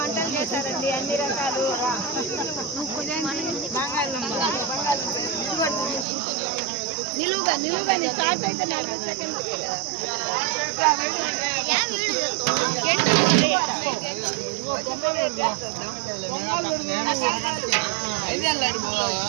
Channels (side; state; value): left; drops out; at 6.1 s